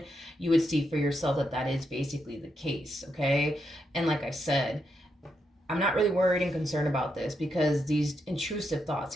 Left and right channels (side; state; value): both; normal; correlation 0.82